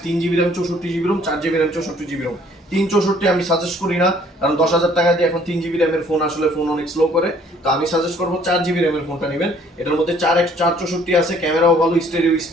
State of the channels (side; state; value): both; normal; correlation 0.59